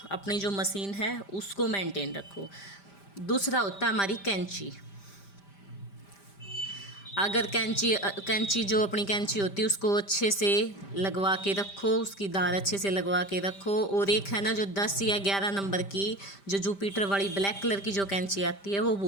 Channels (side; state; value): right; late; 5.1 ms